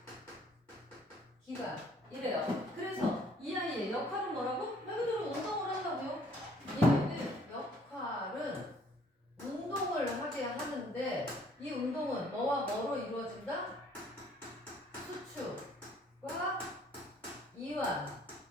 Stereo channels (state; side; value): normal; both; correlation 0.60